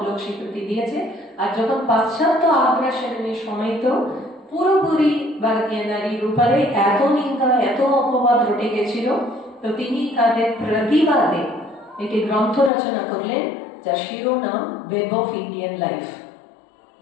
লোক স্বীকৃতি দিয়েছে। আর যখন পাশ্চাত্য আগ্রাসনের সময় তো পুরোপুরি ভারতীয় নারীর উপরে এত নিন্দা, এত অপবাদ রটে গেছিল, তো তিনি তাদের প্রতিবাদে একটি গ্রন্থ রচনা করলেন যার শিরোনাম ওয়েব অফ ইন্ডিয়ান লাইফ।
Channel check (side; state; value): right; drops out; at 12.7 s